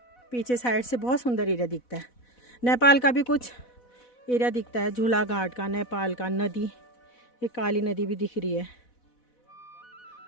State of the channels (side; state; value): right; late; 4.1 ms